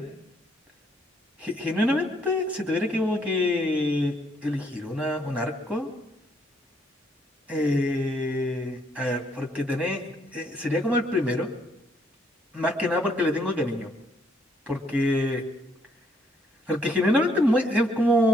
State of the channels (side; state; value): both; normal; correlation 0.70